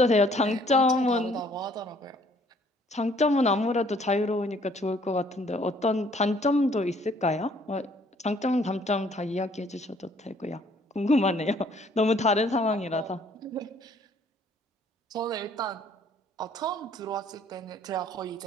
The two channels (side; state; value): both; normal; correlation 0.61